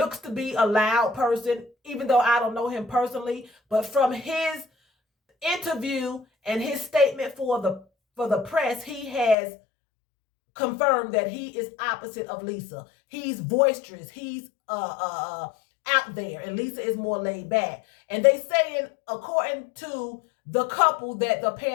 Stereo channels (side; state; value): right; drops out; at 9.3 s